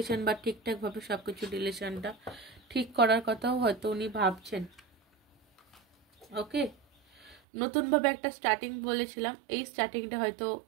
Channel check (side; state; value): left; drops out; at 7.4 s